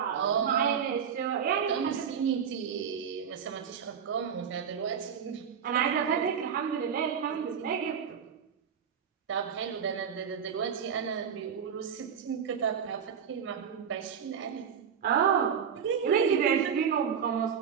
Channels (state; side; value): quieter; left; 7.4 dB